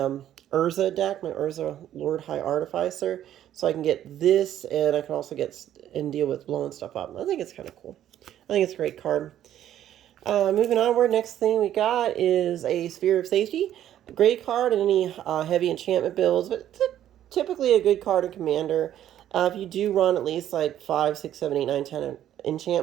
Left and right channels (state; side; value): quieter; left; 11.5 dB